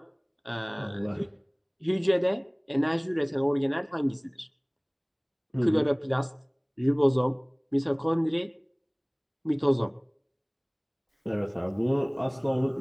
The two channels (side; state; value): both; identical; correlation 1.00